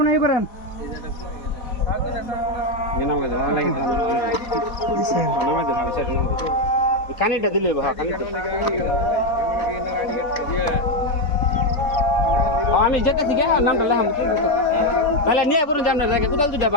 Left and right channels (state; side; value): late; right; 4.1 ms